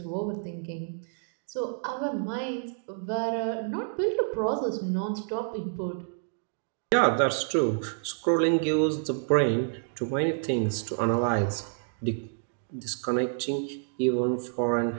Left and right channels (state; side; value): silent; left; digital silence